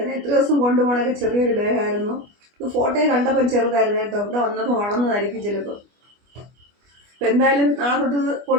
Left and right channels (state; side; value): late; left; 25 ms